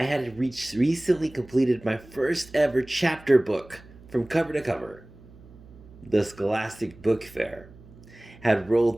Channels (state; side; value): noise; right; hum, 22 dB below the sound